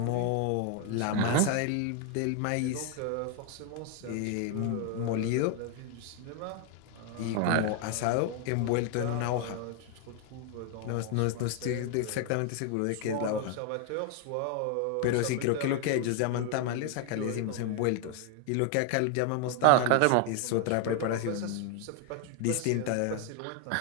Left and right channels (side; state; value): both; different; correlation 0.00